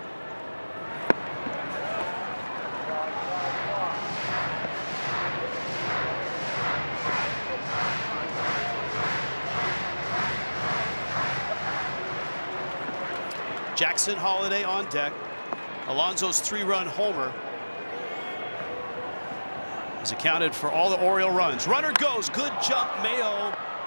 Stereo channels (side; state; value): both; inverted; correlation -1.00